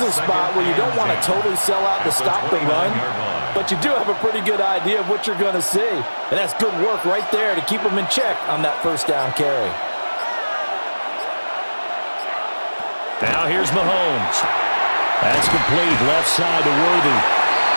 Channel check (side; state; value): both; inverted; correlation -1.00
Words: a spot where you don't want to totally sell out to stop the run, but you do have a pretty good idea of what you're going to see. And that's good work right there to keep them in check on that first down carry. Now here's Mahomes. That's complete, left side to Worthy.